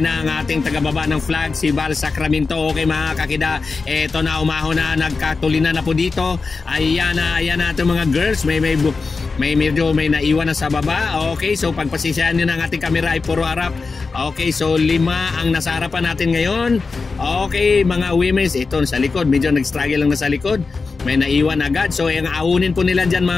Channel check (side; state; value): right; quieter; 4.3 dB